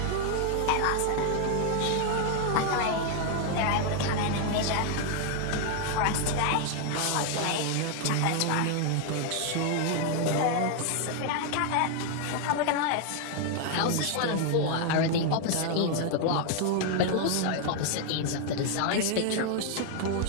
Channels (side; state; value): both; different; correlation 0.01